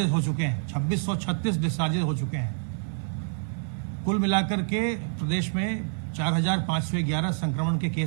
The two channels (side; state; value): left; silent; 60 dB below the other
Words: हो चुके हैं। 2636 डिस्चार्जेस हो चुके हैं। कुल मिलाकर के प्रदेश में 4511 संक्रमण के